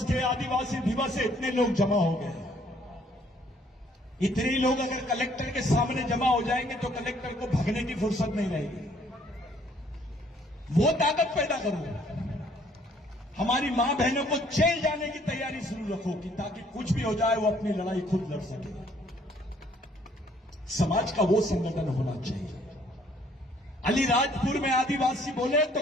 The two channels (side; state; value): both; normal; correlation 0.63